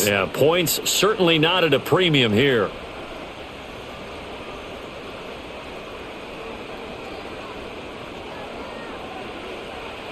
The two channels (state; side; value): identical; both; correlation 1.00